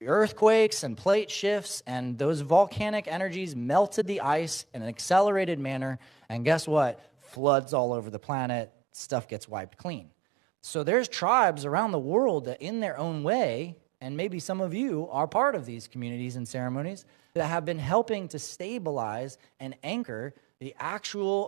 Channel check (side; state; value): left; drops out; at 7.4 s